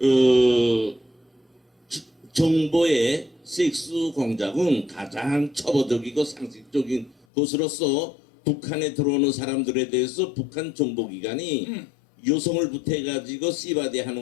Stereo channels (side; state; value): right; drops out; at 7.2 s